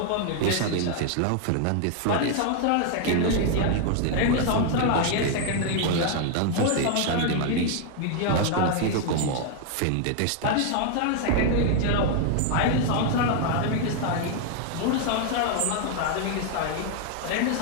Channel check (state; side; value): different; both; correlation 0.00